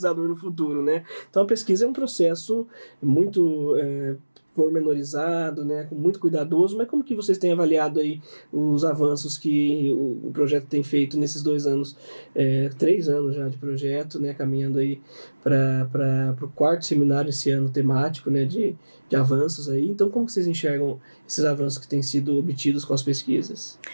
no futuro, né? Então a pesquisa é um processo muito pormenorizado, né, muito cuidadoso, mas como que vocês têm avaliado aí os avanços que o projeto tem feito nesses 2 anos, 3 anos já de projeto, né, caminhando aí para o 4º seminário esse ano temático, né, de avanços aí. Então, como que vocês enxergam esses avanços que têm sido obtidos com as pesquisas?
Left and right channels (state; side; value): inverted; both; correlation -1.00